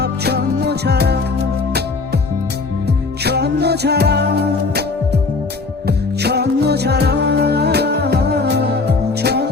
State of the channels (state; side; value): quieter; right; 4.0 dB